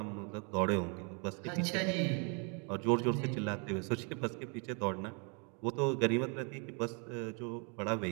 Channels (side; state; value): left; quieter; 36.3 dB